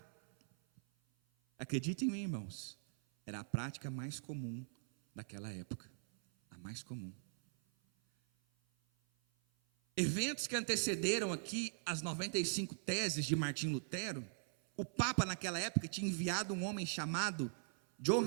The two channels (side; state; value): left; silent; 51 dB below the other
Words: Acreditem em mim, irmãos, era a prática mais comum daquela época, a mais comum. Eventos que antecederam aqui as 95 teses de Martim Lutero, o Papa naquela época tinha enviado um homem chamado